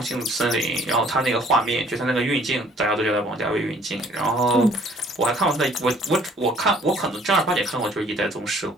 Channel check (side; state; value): both; normal; correlation 0.58